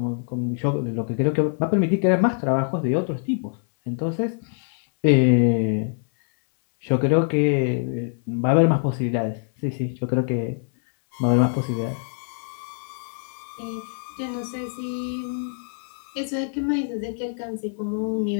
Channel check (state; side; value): silent; right; 62 dB below the other